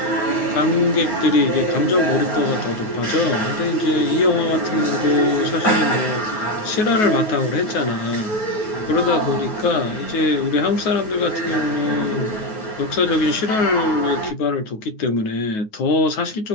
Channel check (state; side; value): late; right; 9.4 ms